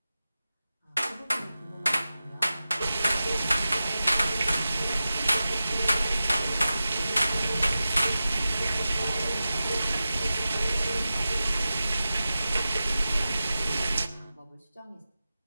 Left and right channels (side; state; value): both; inverted; correlation -0.94